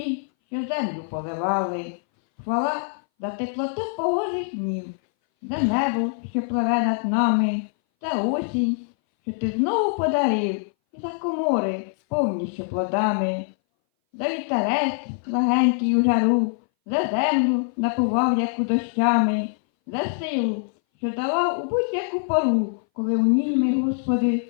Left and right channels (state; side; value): silent; right; 60 dB below the other